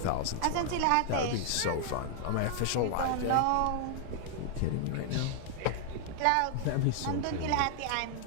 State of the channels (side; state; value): both; different; correlation 0.00